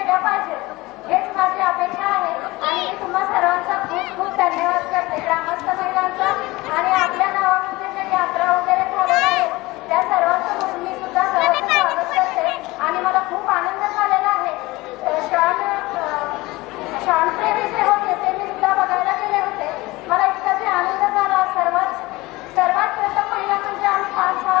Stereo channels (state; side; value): quieter; right; 20.9 dB